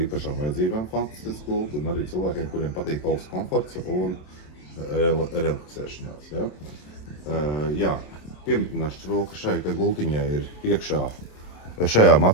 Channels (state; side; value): late; right; 27 ms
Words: īpašām vajadzībām fantastisks gultu, un arī cilvēkiem, kuriem patīk augsts komforts un relaksēšanās. Piemetināšu to, ka šai gultiņai ir iekšā, šajā